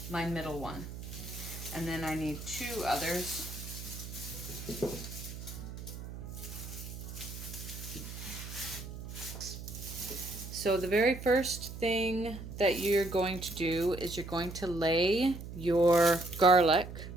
my middle one. And then I need 2 others. So so the very first thing that you're going to do is you're going to lay your garlic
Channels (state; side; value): noise; right; hum, 10 dB below the sound